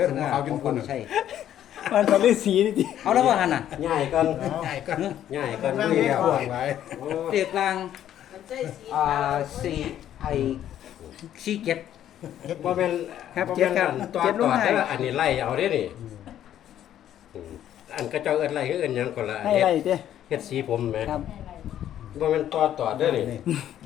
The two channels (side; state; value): right; quieter; 11.2 dB